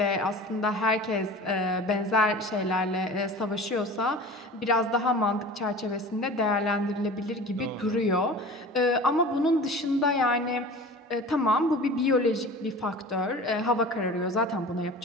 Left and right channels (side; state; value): both; normal; correlation 0.38